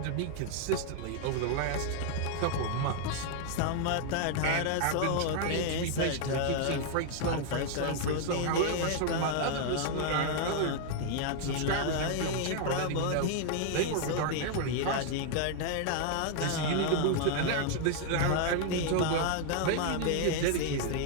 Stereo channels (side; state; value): both; different; correlation 0.00